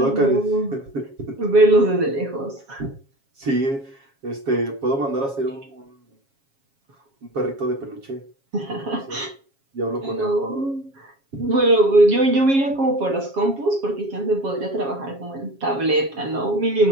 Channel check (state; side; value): late; left; 7.3 ms